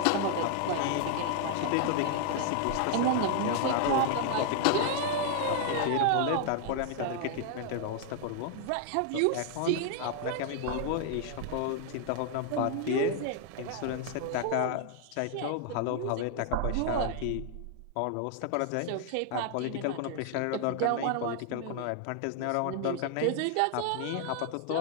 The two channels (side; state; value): both; different; correlation 0.00